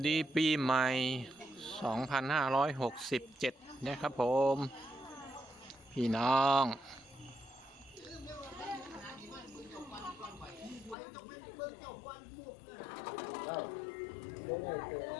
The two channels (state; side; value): drops out; right; at 11.0 s